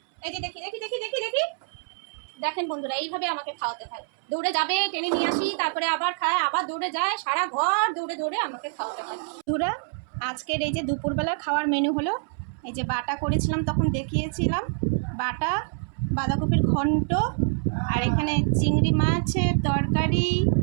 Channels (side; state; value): left; silent; 61 dB below the other